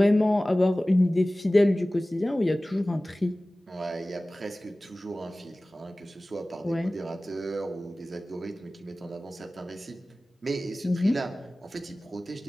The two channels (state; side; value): normal; both; correlation 0.97